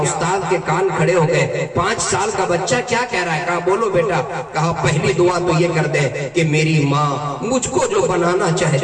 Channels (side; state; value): both; identical; correlation 1.00